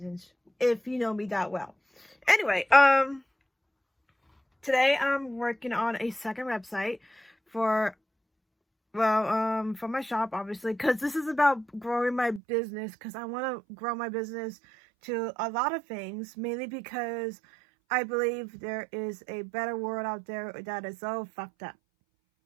if you know me that well. Anyway, today I'm working on a second website for my shop, obviously, because this is about growing my business, because I want to grow my business to a lot of things, mainly because I believe there is a better world out there that is so fucked up.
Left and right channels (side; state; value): left; drops out; at 12.4 s